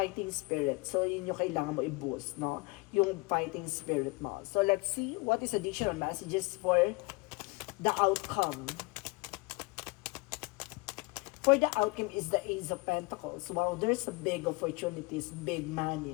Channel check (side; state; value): right; quieter; 25.6 dB